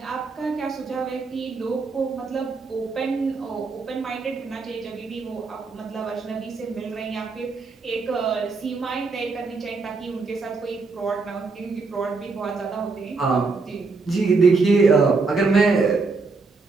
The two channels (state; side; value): quieter; left; 4.2 dB